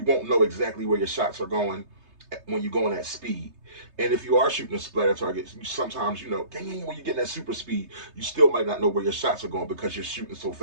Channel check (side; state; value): left; late; 3.3 ms